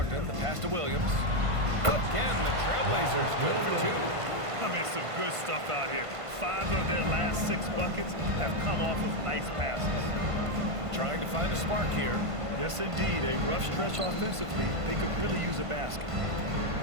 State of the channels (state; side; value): late; left; 1.5 ms